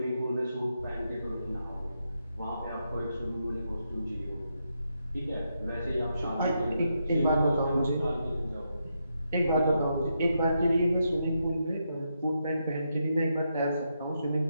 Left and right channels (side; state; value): both; inverted; correlation -0.82